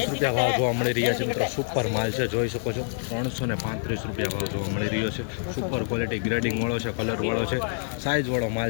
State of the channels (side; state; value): right; silent; 61 dB below the other